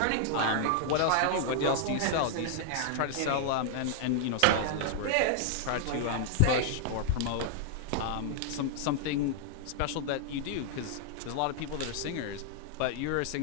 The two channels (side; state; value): both; different; correlation -0.01